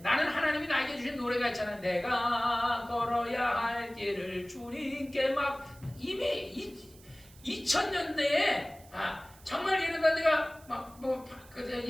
나는 하나님이 나에게 주신 노래가 있잖아요. 내가 걸어야 할 길을 주님께 막 이미 2000년대에 정말 이러다 내가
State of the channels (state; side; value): noise; right; hiss, 24 dB below the sound